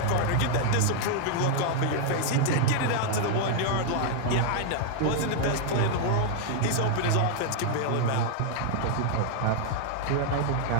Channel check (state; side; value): different; both; correlation 0.00